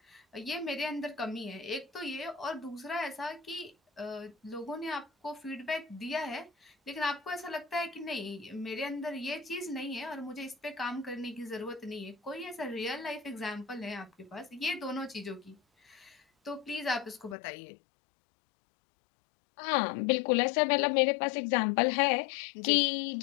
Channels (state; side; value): drops out; right; at 17.4 s